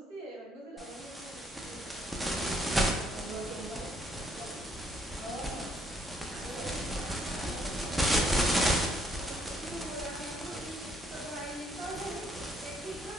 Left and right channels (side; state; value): both; normal; correlation 0.69